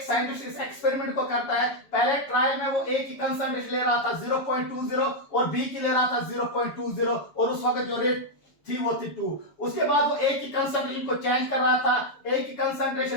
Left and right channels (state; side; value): late; right; 7.1 ms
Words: साइंटिस्ट इस एक्सपेरिमेंट को करता है, पहले ट्रायल में वो A की कंसंट्रेशन ले रहा था 0.20 और B की ले रहा था 0.20 और उस वक्त जो रेट थी वो थी 2। उसके बाद वो A की कंसंट्रेशन को चेंज कर रहा था, A की